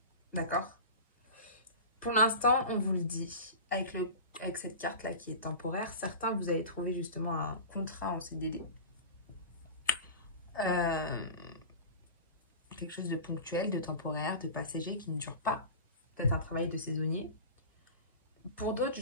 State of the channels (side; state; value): both; inverted; correlation -0.31